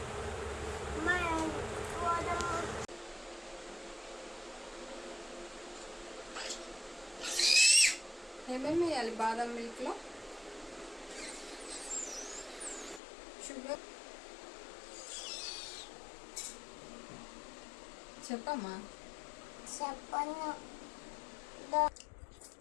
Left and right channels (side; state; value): right; drops out; at 13.0 s